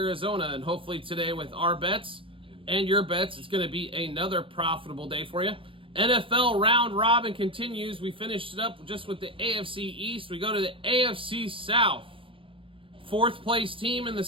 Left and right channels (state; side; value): late; left; 0.25 ms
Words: and hopefully today with our bets and your bets, it's going to be another profitable day for you. NFL round robin continues. We finished it up just with the AFC East. We go to the AFC South. Fourth place team in the